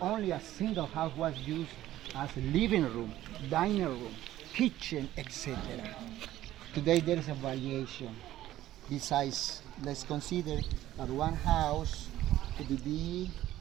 only a single house was used as a living room, dining room, kitchen, etc. Today there is a variation. Besides, let's consider that one house could be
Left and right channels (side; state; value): left; quieter; 14.0 dB